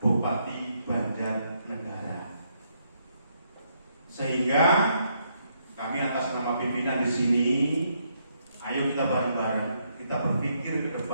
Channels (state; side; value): inverted; both; correlation -0.75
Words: Bupati Banjarnegara. Sehingga kami atas nama pimpinan di sini, ayo kita bareng-bareng, kita berpikir ke